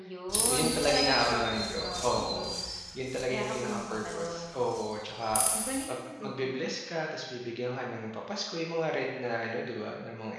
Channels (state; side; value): identical; both; correlation 1.00